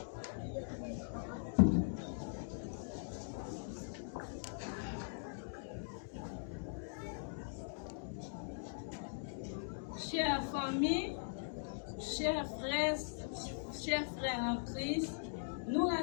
famille, chers frères en Christ, nous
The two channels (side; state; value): right; silent; digital silence